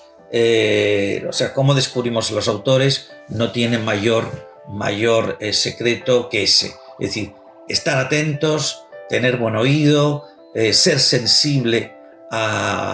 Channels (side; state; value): both; identical; correlation 1.00